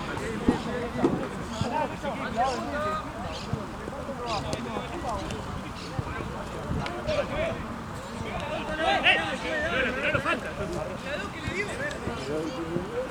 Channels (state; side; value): identical; both; correlation 1.00